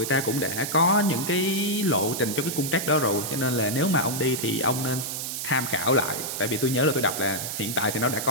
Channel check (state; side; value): noise; right; hiss, 4 dB below the sound